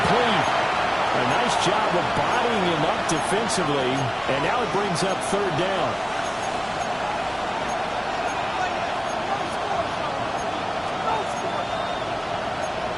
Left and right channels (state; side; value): identical; both; correlation 1.00